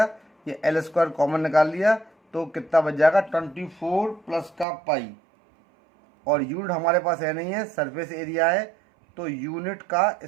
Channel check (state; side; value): drops out; left; at 4.7 s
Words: ये L² कॉमन निकाल लिया, तो कितना बच जाएगा 24 प्लस का पाई, और यूनिट हमारे पास है नहीं है, सरफेस एरिया है, तो यूनिट का